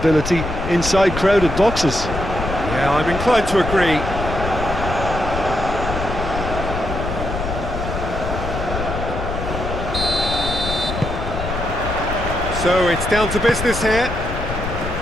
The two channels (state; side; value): noise; left; rumble, 6 dB below the sound